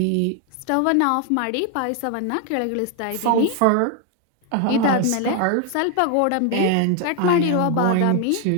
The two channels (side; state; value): both; different; correlation 0.00